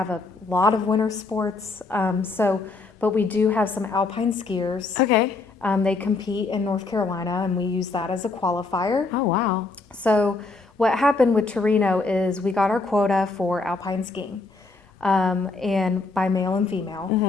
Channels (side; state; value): right; quieter; 3.7 dB